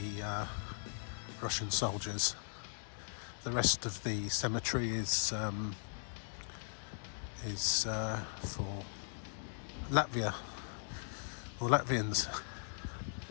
Russian soldiers. The rest of the cemetery is for Latvia or Latvians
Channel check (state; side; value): silent; right; digital silence